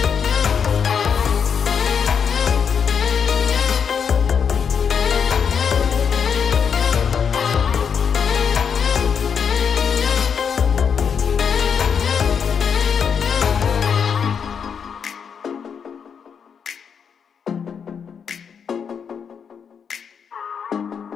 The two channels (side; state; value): right; quieter; 6.9 dB